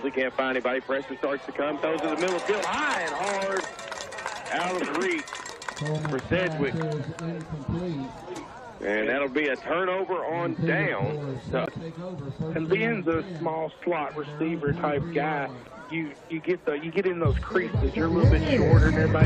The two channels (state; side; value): identical; both; correlation 1.00